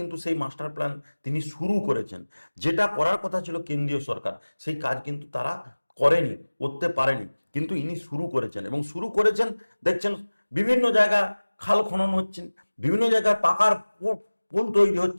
সেই মাস্টার প্ল্যান তিনি শুরু করেছেন। যেটা করার কথা ছিল কেন্দ্রীয় সরকার, সেই কাজ কিন্তু তারা করেনি, করতে পারেনি, কিন্তু ইনি শুরু করেছেন। এবং শুরু করেছেন দেখছেন বিভিন্ন জায়গায় খাল খনন হচ্ছেন, বিভিন্ন জায়গায় পাকার পুল তৈরি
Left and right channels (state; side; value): inverted; both; correlation -1.00